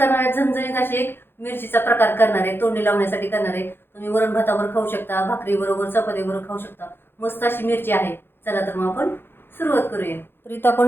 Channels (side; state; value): right; late; 0.10 ms